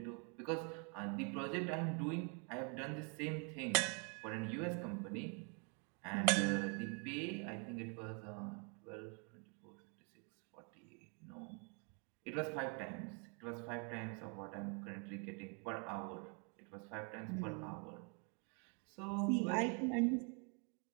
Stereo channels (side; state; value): left; quieter; 36.7 dB